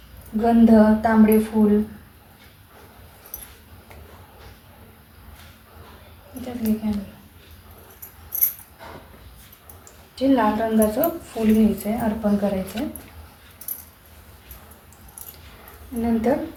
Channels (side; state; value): both; identical; correlation 1.00